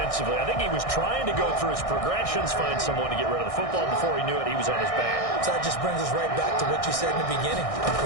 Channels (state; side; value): late; right; 1.6 ms